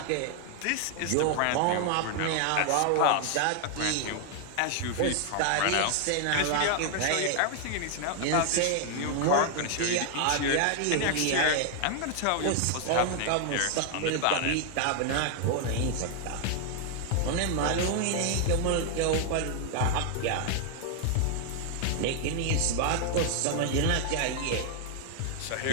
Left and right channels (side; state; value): both; different; correlation 0.00